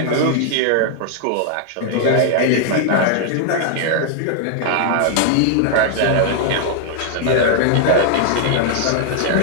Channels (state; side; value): different; both; correlation -0.01